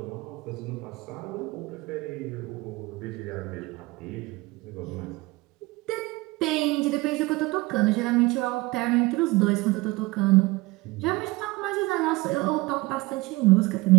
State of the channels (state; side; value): quieter; left; 21.9 dB